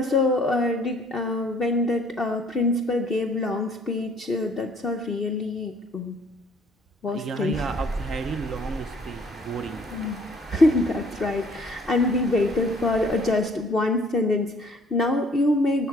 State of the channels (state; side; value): normal; both; correlation 0.59